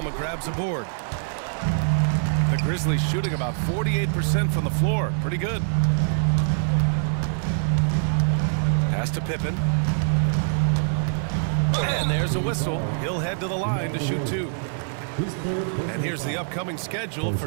grabs a board. The Grizzlies shooting about 48% from the floor. Pretty good. Pass to Pippen. And there's a whistle. He'll head to the line to shoot two. And here's the upcoming schedule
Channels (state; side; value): silent; left; digital silence